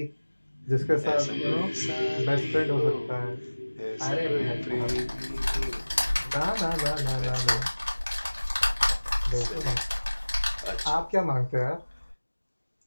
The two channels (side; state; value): both; inverted; correlation -1.00